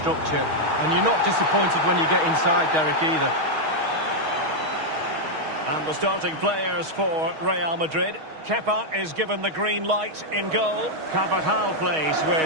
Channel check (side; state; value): left; late; 6.3 ms